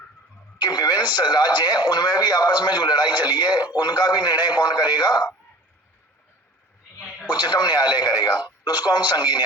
कि विभिन्न राज्य हैं उनमें भी आपस में जो लड़ाई चली है उनका भी निर्णय कौन करेगा, उच्चतम न्यायालय करेगा। तो उसको हम संघीय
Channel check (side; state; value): both; normal; correlation 0.43